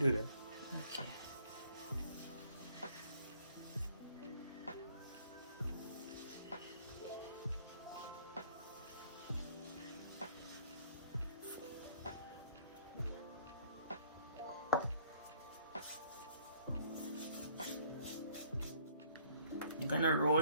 that. Okay. I'm gonna roll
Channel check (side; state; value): both; inverted; correlation -0.60